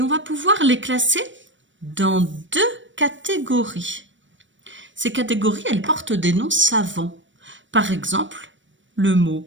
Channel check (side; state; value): left; late; 0.55 ms